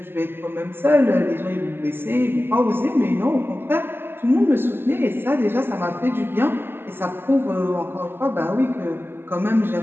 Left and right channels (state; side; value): late; left; 0.10 ms